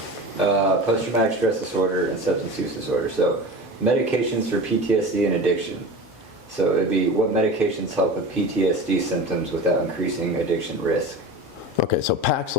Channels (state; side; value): normal; both; correlation 0.32